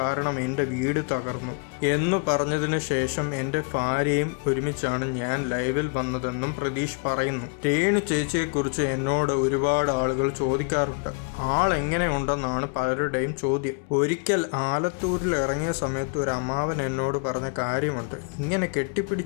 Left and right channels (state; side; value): quieter; right; 35.7 dB